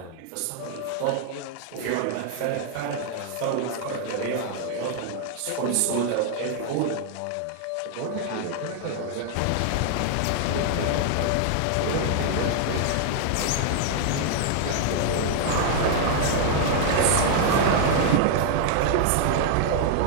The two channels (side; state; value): both; different; correlation 0.00